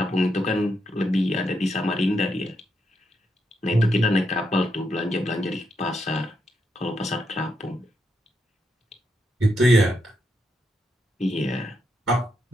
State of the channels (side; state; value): both; normal; correlation 0.81